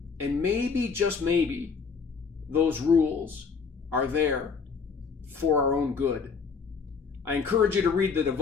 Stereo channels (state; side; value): quieter; right; 5.4 dB